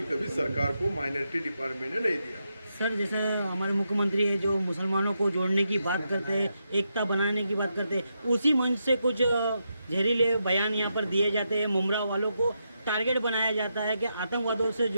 कभी सरकार को माइनॉरिटी डिपार्टमेंट ने नहीं दिया। सर, जैसे हमारे मुख्यमंत्री हैं जो मुसलमानों को जोड़ने की बात करते हैं, एकता बनाने की बात करते हैं, उसी मंच से कुछ जहरीले बयान यहाँ पर दिए जाते हैं, मुमरा वालों को टारगेट बनाया जाता है कि आतंकवादियों से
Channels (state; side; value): inverted; both; correlation -0.83